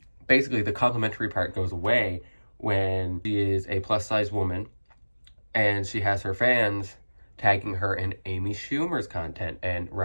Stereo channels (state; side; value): inverted; both; correlation -1.00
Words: basically the complimentary part goes away when she is a plus size woman and she has her fans tagging her in Amy Schumer's content and